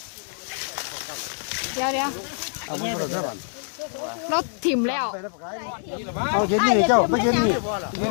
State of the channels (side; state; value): right; silent; 62 dB below the other